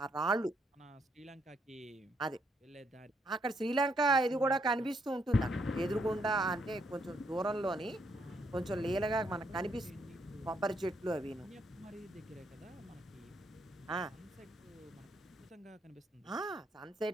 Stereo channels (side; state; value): both; normal; correlation 0.74